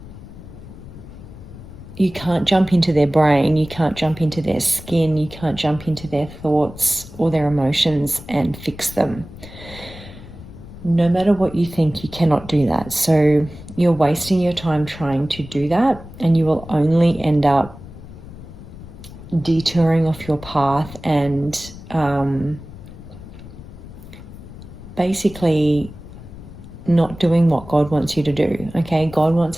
you can't jump into their brain, you can't jump into their skin, you can't jump into their thoughts or their emotions and fix them. No matter what you think, you cannot do that. So you're wasting your time trying to do that, and you will only end up detouring off your path and basically not doing what God wants you to do. Okay, God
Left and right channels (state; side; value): noise; left; rumble, 16 dB below the sound